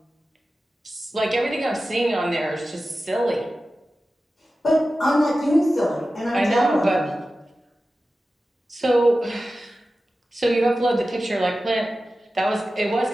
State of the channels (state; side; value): normal; both; correlation 0.94